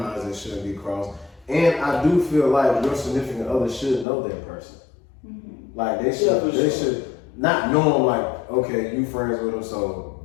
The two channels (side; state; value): right; drops out; at 4.0 s